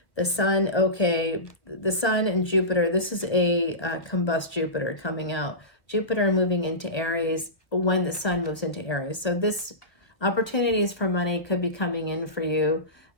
The sun, okay, the sun and Jupiter. This is a combust Jupiter coming out. Jupiter moving into Aries when the sun moves into Aries. So this opportunities for money could be coming in for you.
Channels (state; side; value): late; right; 1.3 ms